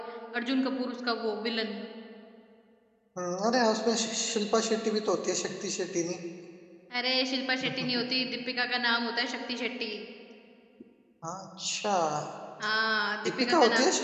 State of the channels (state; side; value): identical; both; correlation 1.00